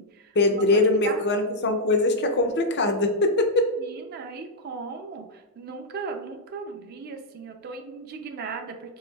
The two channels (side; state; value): both; normal; correlation -0.04